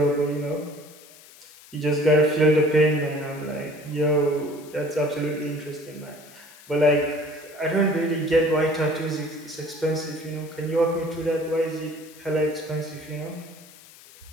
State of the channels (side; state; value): left; noise; hiss, 22 dB below the sound